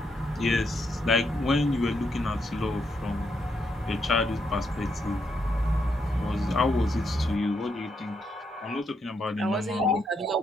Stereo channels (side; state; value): both; normal; correlation 0.79